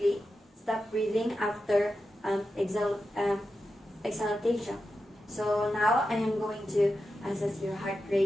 stop breathing after exhalation. So now I am going to assess your heart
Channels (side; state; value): both; normal; correlation 0.90